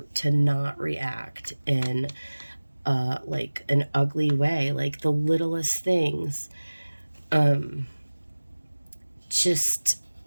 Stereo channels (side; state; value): both; inverted; correlation -1.00